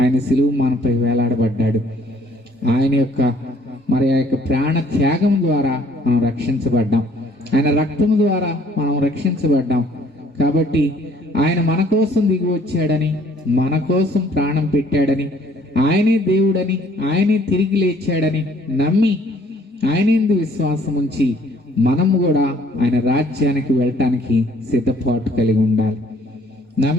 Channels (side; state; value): both; normal; correlation 0.60